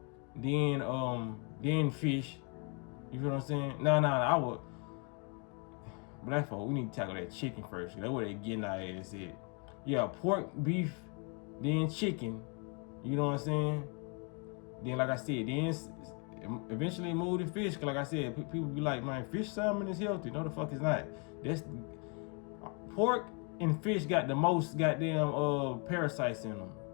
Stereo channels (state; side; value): quieter; right; 36.3 dB